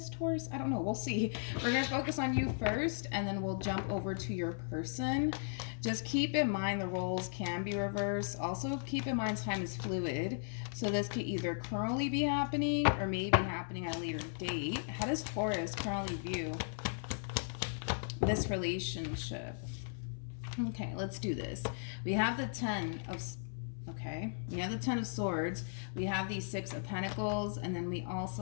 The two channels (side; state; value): right; silent; 53 dB below the other